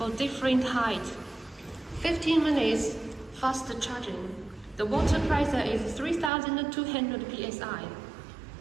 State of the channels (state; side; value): drops out; left; at 6.3 s